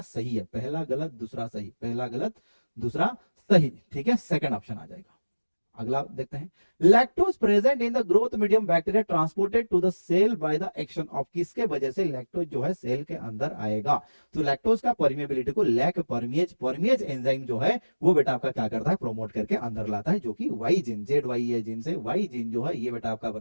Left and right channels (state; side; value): inverted; both; correlation -1.00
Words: सही है, पहला गलत दूसरा सही, पहला गलत दूसरा सही। ठीक है, सेकंड ऑप्शन आ जाएगा। अगला देखते हैं, lactose present in the growth medium bacteria transported to the cell by the action of, किसके वजह से लैक्टोज जो है सेल के अंदर आएगा, तो लैक्टोज का परमिएबिलिटी को लैक परमिएज एंजाइम जो है वो बेटा आपका क्या करता है, प्रोमोट करके अंदर लाता है, जो कि वाई जीन, जेड वाई ए जीन से वाई जीन जो है ये बेटा आपका